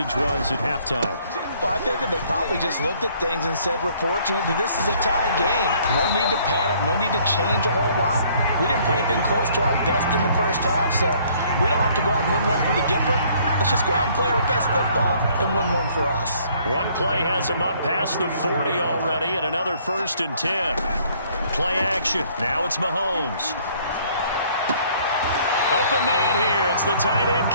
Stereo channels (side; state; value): both; inverted; correlation -0.61